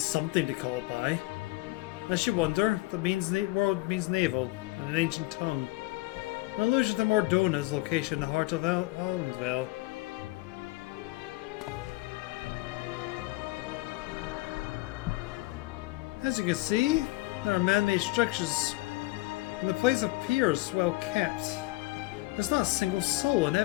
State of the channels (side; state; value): right; quieter; 20.4 dB